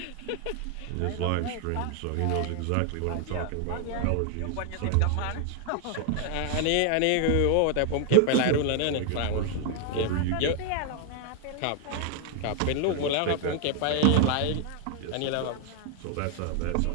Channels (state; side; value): different; both; correlation 0.00